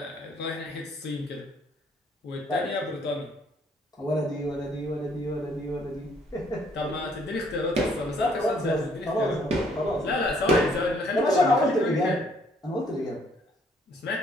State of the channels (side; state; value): both; normal; correlation 0.65